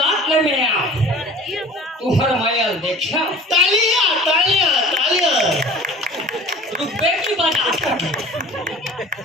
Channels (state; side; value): normal; both; correlation 0.44